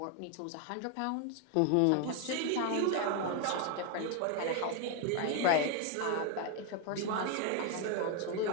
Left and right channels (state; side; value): different; both; correlation 0.01